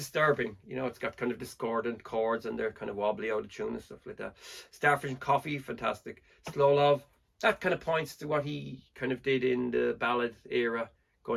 You know, it's got kind of discordant chords and they're kind of wobbly out of tune and stuff like that. Starfish and Coffee, fantastic. Slow Love, that kind of points to what he kind of did in the ballad era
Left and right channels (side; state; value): both; identical; correlation 1.00